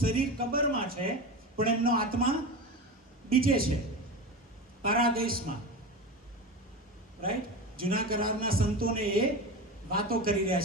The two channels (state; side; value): normal; both; correlation 0.25